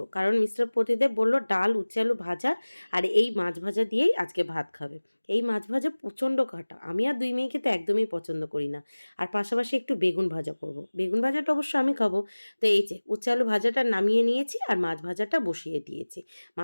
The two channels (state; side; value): inverted; both; correlation -1.00